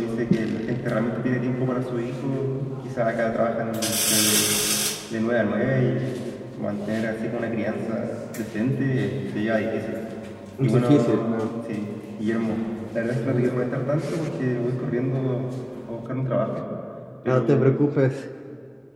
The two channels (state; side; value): identical; both; correlation 1.00